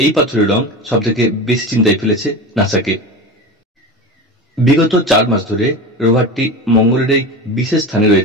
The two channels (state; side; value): normal; both; correlation 0.28